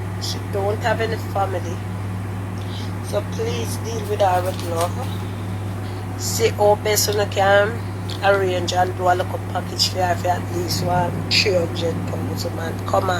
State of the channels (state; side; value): identical; both; correlation 1.00